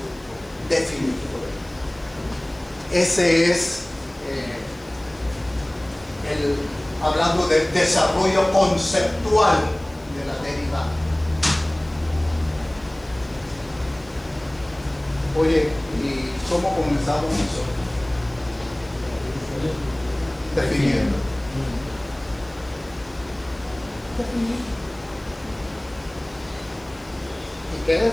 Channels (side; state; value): left; noise; hiss, 28 dB below the sound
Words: definir. Ese es hablando del desarrollo conceptual de la derivada. Oye, ¿y cómo comenzamos nosotros? Definiendo. ¿Y qué